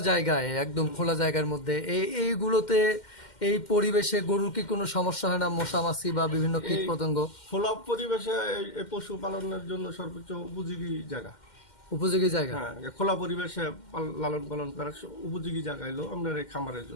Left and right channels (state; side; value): late; right; 2.1 ms